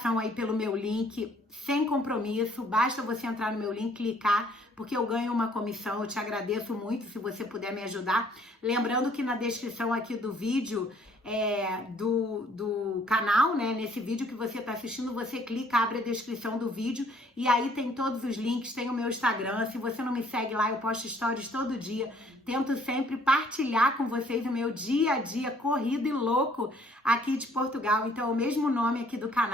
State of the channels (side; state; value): both; normal; correlation 0.61